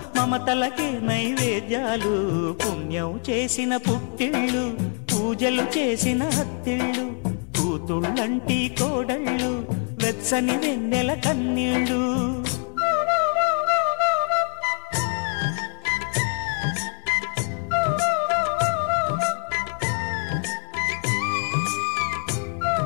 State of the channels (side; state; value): right; quieter; 37.4 dB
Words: మమతలకి నైవేద్యాలు పుణ్యం చేసిన పుట్టిళ్ళు పూజలు చేసిన హత్తిళ్ళు కూతుళ్ళంటి కోడళ్ళు వెచ్చని వెన్నెల కన్నీళ్ళు